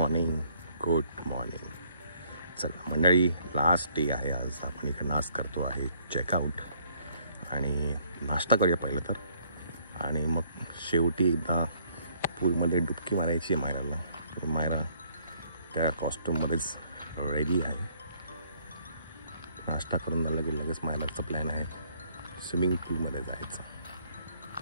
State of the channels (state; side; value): inverted; both; correlation -0.65